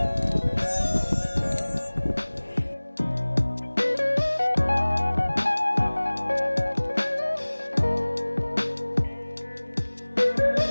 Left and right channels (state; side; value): inverted; both; correlation -1.00